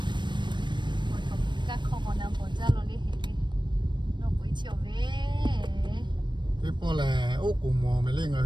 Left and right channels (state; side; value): late; left; 0.22 ms